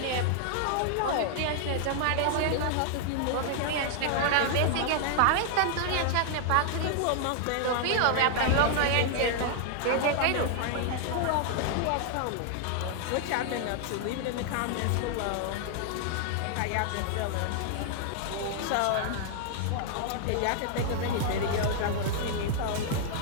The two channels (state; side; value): different; both; correlation 0.00